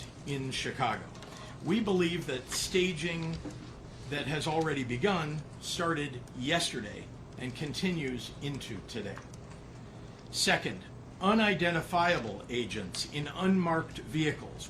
in Chicago. We believe that staging that has already begun started yesterday and continues into today. Second, unidentifiable agents in unmarked vehicles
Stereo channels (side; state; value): both; identical; correlation 1.00